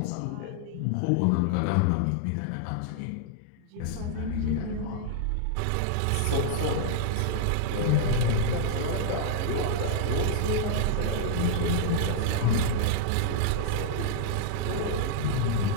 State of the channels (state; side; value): different; both; correlation -0.01